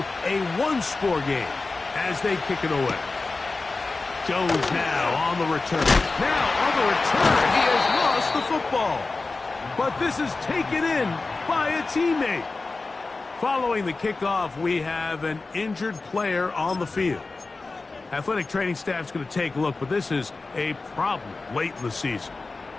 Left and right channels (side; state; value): right; quieter; 3.7 dB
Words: a one-score game as they kick it away. Jones now on the return. Now on the return, he has lost the football. But this is taken in by a teammate. Following the kickoff, we have an injured player on the field. Athletic training staff's going to take a look, but this is a problem late in the season.